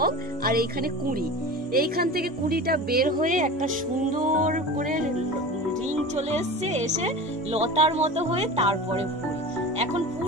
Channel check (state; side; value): normal; both; correlation 0.33